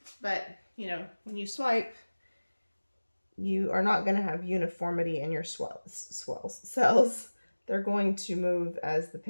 But, you know, when you swipe, you are not going to have uniformity in your cells. They're going to move as the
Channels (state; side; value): inverted; both; correlation -1.00